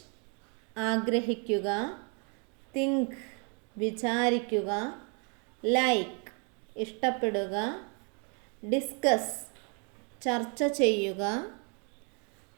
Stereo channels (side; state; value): left; quieter; 37.4 dB